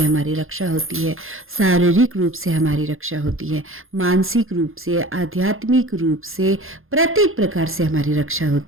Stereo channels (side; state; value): left; late; 0.60 ms